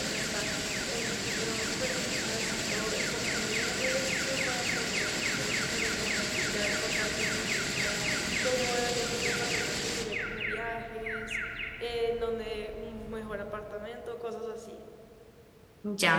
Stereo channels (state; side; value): identical; both; correlation 1.00